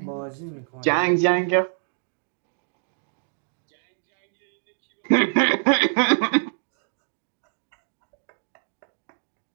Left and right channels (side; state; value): left; silent; digital silence